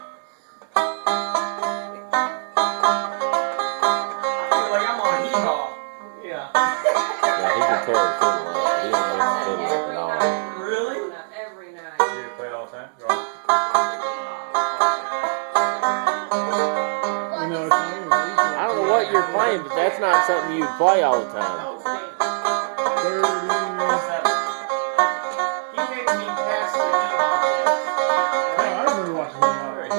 But that's not something you play all the time. He makes me pass the heat on this. I remember watching him.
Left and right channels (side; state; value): left; silent; 64 dB below the other